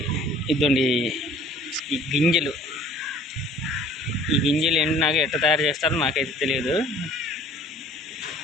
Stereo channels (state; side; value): normal; both; correlation 0.51